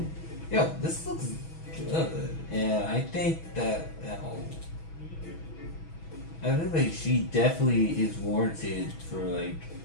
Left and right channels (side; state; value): right; late; 6.2 ms